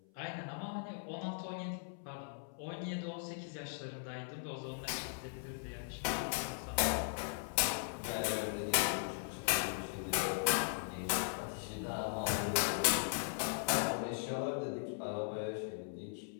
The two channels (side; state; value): right; silent; 52 dB below the other